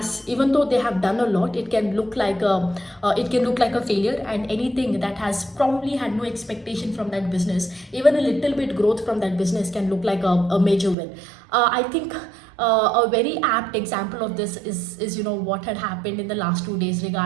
even though they have done a lot, it can look like a failure. And anything that has probably had no expectation from that business, even a little bit growth from that business can look like a major win. I think a very apt example of this is what had happened in the last 2 days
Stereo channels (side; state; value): left; drops out; at 11.0 s